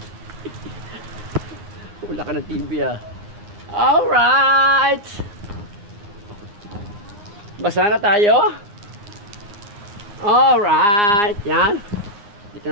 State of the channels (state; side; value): late; left; 9.7 ms